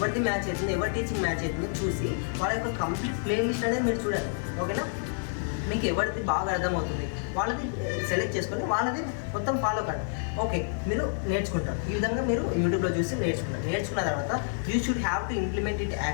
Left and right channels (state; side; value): silent; right; 59 dB below the other